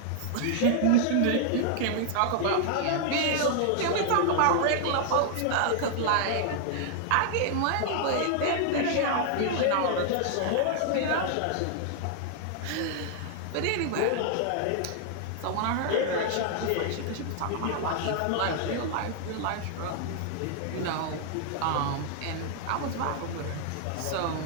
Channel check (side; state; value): both; different; correlation -0.01